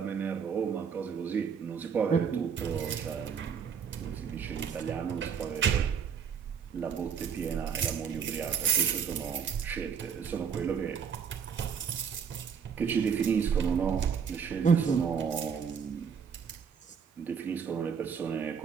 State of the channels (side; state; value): left; quieter; 6.9 dB